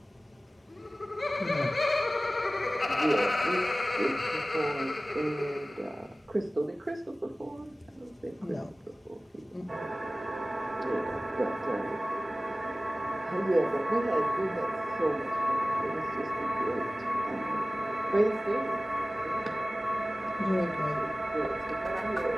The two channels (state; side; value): normal; both; correlation 0.97